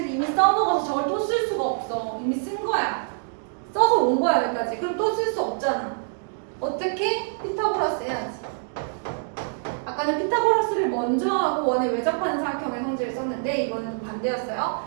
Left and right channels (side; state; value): left; silent; digital silence